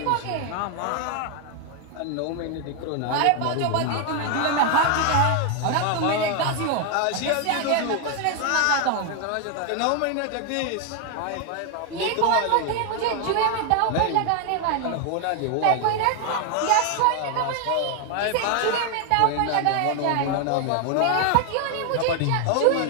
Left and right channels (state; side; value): different; both; correlation 0.00